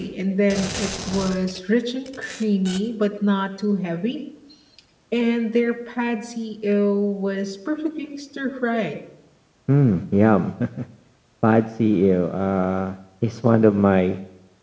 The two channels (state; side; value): identical; both; correlation 1.00